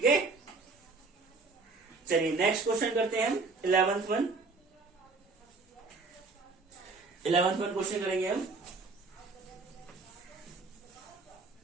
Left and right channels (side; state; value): left; quieter; 4.0 dB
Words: है, चलिए नेक्स्ट क्वेश्चन करते हैं हम 11th one. 11th one question करेंगे हम।